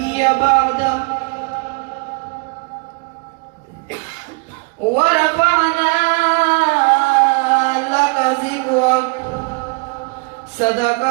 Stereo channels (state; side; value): quieter; left; 32.6 dB